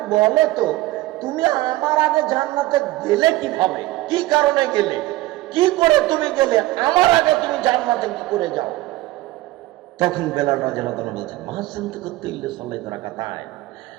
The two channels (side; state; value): left; quieter; 17.9 dB